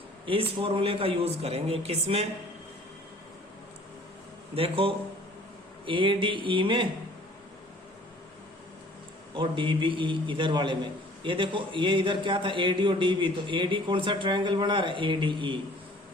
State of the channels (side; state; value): both; normal; correlation 0.51